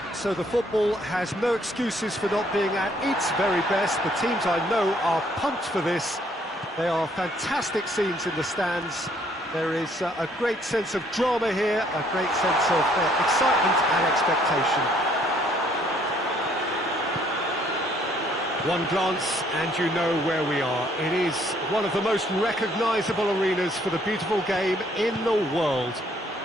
so the football has no excuses for not being at its very best. The teams I know are pumped for this. They are fantastic scenes in the stands. There is a great sense of drama here, a great sense of excitement and expectation. One glance and you know where we are. It is one of the most recognisable arenas for the beautiful game in the world.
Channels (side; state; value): both; normal; correlation 0.65